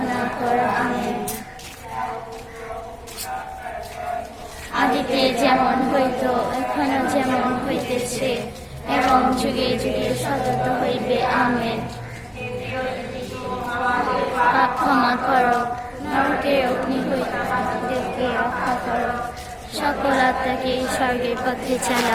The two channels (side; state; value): both; identical; correlation 1.00